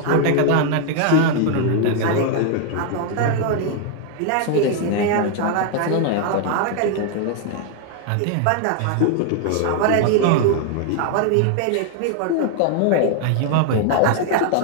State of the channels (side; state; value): both; different; correlation 0.00